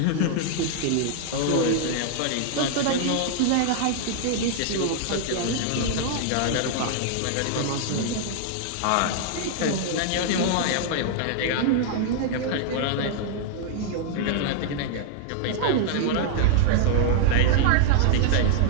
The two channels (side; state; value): both; different; correlation -0.01